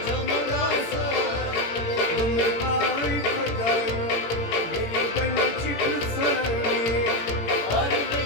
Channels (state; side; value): late; right; 18 ms